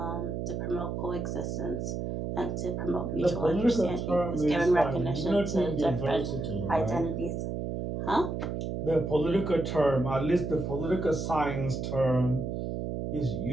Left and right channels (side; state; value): right; noise; hum, 3 dB below the sound